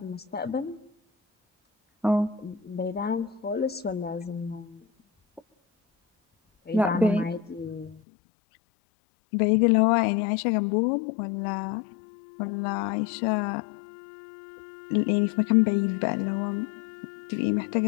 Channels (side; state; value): right; drops out; at 8.0 s